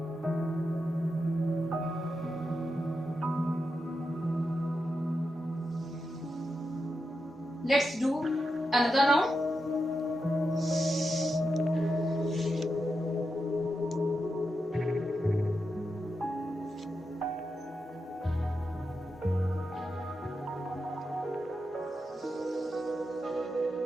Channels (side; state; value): both; normal; correlation 0.87